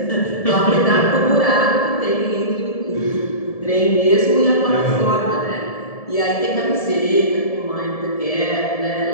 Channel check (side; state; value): right; late; 1.7 ms